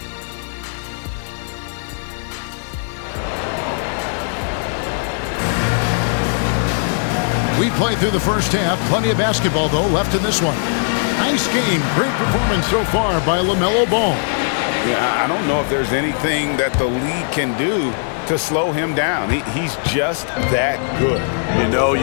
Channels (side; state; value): right; silent; digital silence